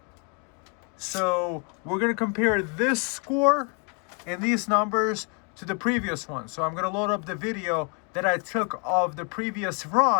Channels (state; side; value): quieter; right; 35.9 dB